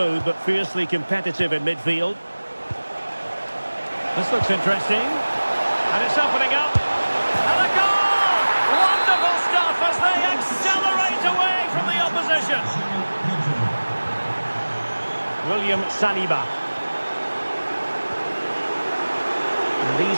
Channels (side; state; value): both; inverted; correlation -1.00